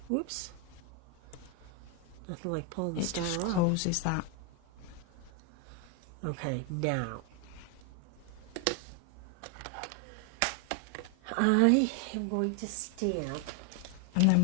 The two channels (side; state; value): both; different; correlation 0.01